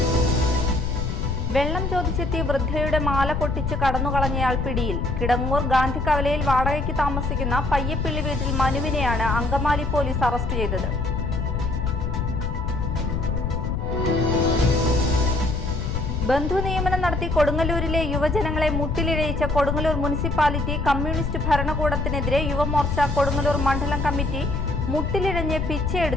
വെള്ളം ചോദിച്ചെത്തി വൃദ്ധയുടെ മാല പൊട്ടിച്ച് കടന്നുകളഞ്ഞയാൾ പിടിയിൽ. കിടങ്ങൂർ ഗാന്ധി കവലയിൽ വാടകയ്ക്ക് താമസിക്കുന്ന പയ്യപ്പിള്ളി വീട്ടിൽ മനുവിനെയാണ് അങ്കമാലി പോലീസ് അറസ്റ്റ് ചെയ്തത്. ബന്ധു നിയമനം നടത്തി കൊടുങ്ങല്ലൂരിലെ യുവജനങ്ങളെ മുട്ടിലിഴയിച്ച കൊടുങ്ങല്ലൂർ മുനിസിപ്പാലിറ്റി കമ്മ്യൂണിസ്റ്റ് ഭരണകൂടത്തിനെതിരെ യുവമോർച്ച കൊടുങ്ങല്ലൂർ മണ്ഡലം കമ്മിറ്റി മുട്ടിലിഴഞ്ഞ്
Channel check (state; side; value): noise; left; rumble, 1 dB below the sound